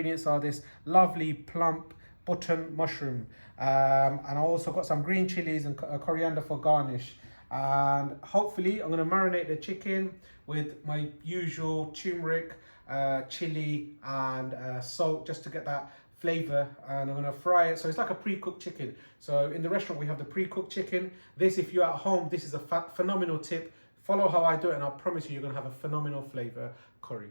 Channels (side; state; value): both; inverted; correlation -1.00